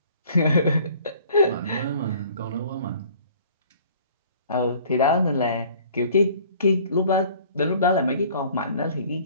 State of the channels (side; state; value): both; inverted; correlation -0.52